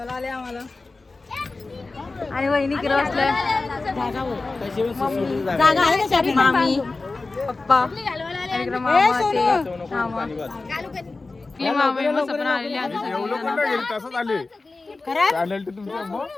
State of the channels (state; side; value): quieter; right; 3.6 dB